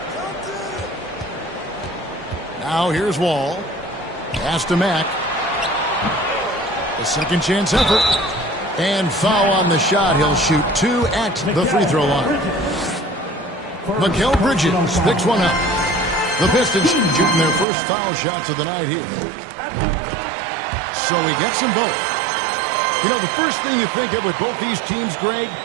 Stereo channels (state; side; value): drops out; left; at 17.7 s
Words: Now here's Wall. Pass to Mack. A second chance effort. And foul on the shot. He'll shoot 2 at the free throw line. Mikal Bridges picks one up. The Pistons shooting their first foul shots of the night here. So he gets them both. You know, the first thing you think of with both these teams, Greg,